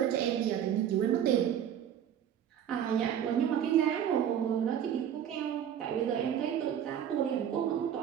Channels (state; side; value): quieter; left; 9.5 dB